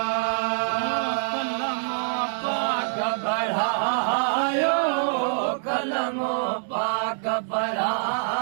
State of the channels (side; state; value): left; silent; digital silence